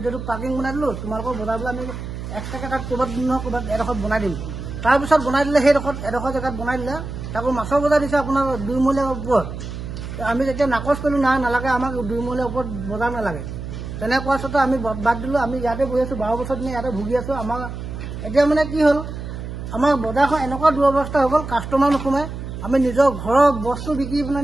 পাৰ্কিং বনাই দিলোঁ, তোমালোকৰ বজাৰ বোলে আমি এক্সট্ৰাকৈ তাত ক'ৰবাত এডোখৰত বনাই দিম। তাৰপিছত বনাই দিলে এডোখৰ জেগাত বনাই দিলে, তাকো মাছৰ বজাৰ দিছে আপোনাৰ 2 মহলীয়াৰ ওপৰত। আমি যেতিয়া নাকচ কৰিলোঁ, নালাগে আমাক 2 মহলীয়াৰ ওপৰত বজাৰ নালাগে। তেনে কোৱাৰ স্বত্তে আমি বাদ দিলোঁ। আমি ইয়াতে বহি আছোঁ, 12 বছৰ দিনে ইয়াতে ভুগি আছোঁ। আমাৰ এতিয়া মানে কি হ'ল, আমাৰ বজাৰখন এনেকুৱা দুৰৱস্থা হৈ গ'ল, কাষ্টমাৰ নোসোমায়। আমি নিজৰ ঘৰৰ বস্তু বিক্ৰী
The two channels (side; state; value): right; noise; hum, 8 dB below the sound